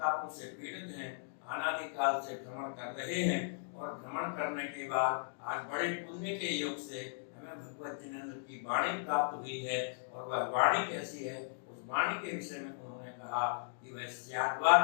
से पीड़ित हैं, अनादिकाल से भ्रमण कर रहे हैं और भ्रमण करने के बाद आज बड़े पुण्य के योग से हमें भगवत जिनेन्द्र की वाणी प्राप्त हुई है। और वह वाणी कैसी है, उस वाणी के विषय में उन्होंने कहा कि वह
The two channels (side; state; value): right; silent; digital silence